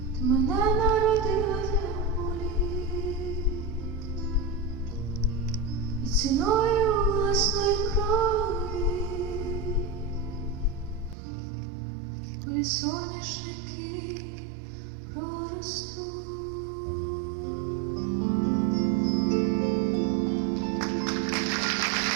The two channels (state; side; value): drops out; left; at 11.2 s